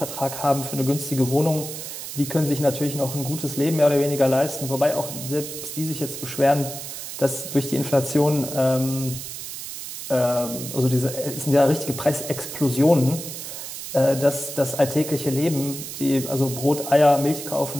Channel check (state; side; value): noise; right; hiss, 9 dB below the sound